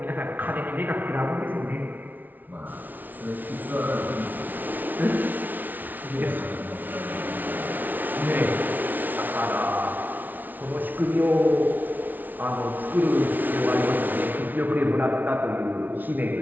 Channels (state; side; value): late; left; 0.082 ms